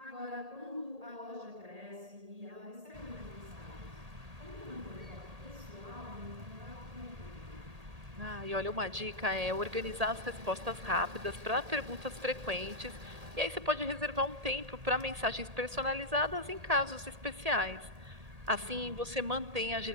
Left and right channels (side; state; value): left; late; 1.8 ms